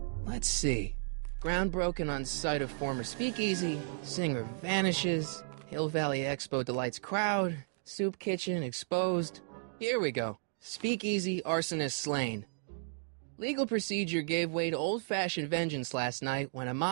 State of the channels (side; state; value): left; silent; digital silence